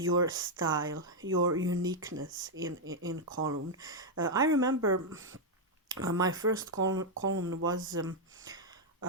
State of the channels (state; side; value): normal; both; correlation -0.01